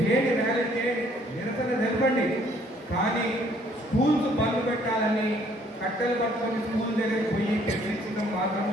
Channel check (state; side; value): normal; both; correlation 0.62